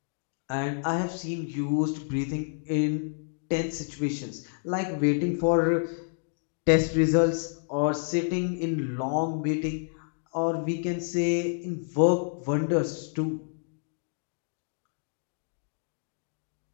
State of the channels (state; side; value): silent; right; digital silence